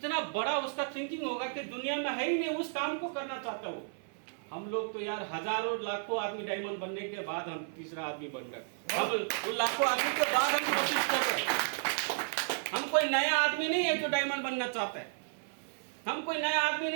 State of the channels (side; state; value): left; silent; 56 dB below the other